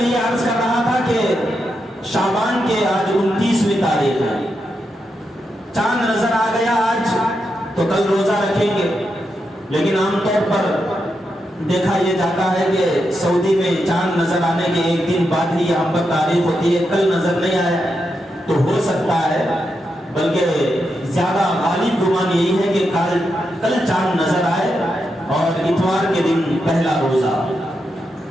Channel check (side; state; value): both; normal; correlation 0.85